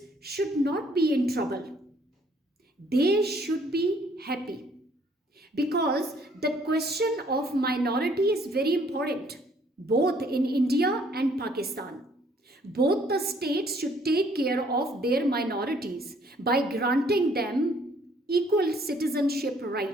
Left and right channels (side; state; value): both; normal; correlation 0.63